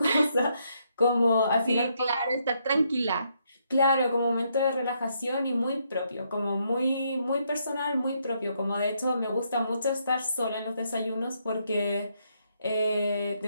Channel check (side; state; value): both; inverted; correlation -0.75